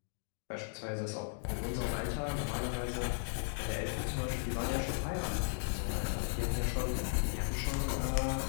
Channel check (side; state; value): right; silent; digital silence